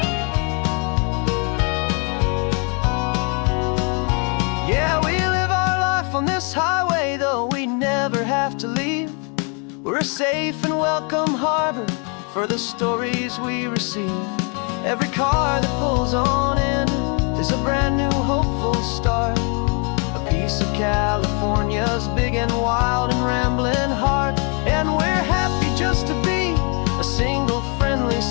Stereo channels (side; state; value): right; quieter; 36.7 dB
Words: Yeah, we live our life on this highway, though we never have to leave. We're a safe and welcome harbor for the stories we receive. Every car that pulls on in is a brand new hopeful start, a piece of California's big and wild and rambling heart. And we're happy just to be a single friendly